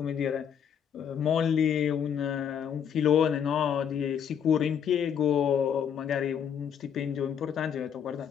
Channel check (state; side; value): quieter; right; 8.2 dB